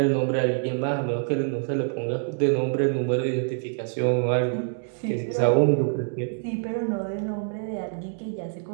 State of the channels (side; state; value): left; silent; 61 dB below the other